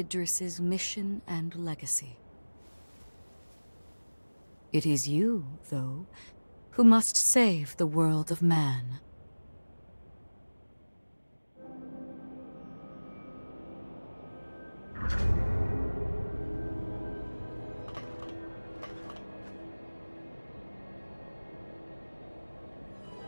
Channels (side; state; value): both; inverted; correlation -1.00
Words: mission and legacy. It is you, though, who must save the world of man.